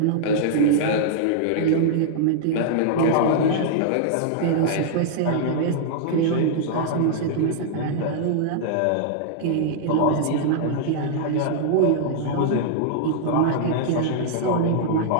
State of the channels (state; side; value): different; both; correlation -0.01